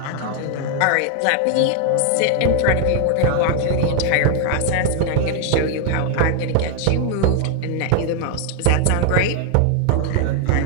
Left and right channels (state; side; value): different; both; correlation 0.00